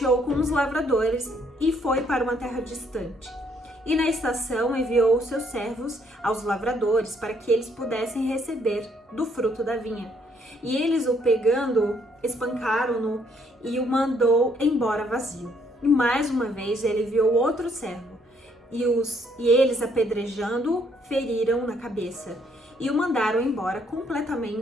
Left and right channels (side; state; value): both; normal; correlation 0.68